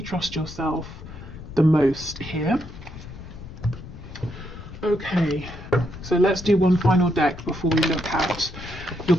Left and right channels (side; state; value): left; noise; rumble, 14 dB below the sound